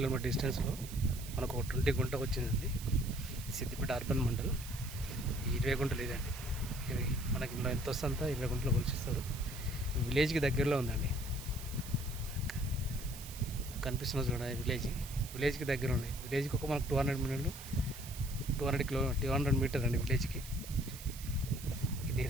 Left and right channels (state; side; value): noise; right; hiss, 13 dB below the sound